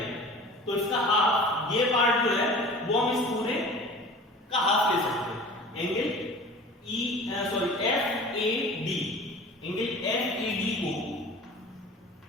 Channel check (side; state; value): both; normal; correlation 0.41